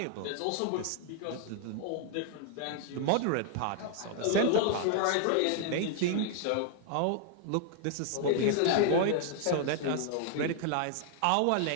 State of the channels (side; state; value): both; different; correlation 0.00